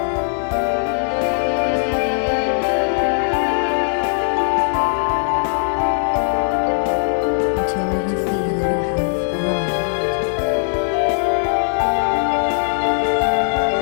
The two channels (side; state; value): right; silent; digital silence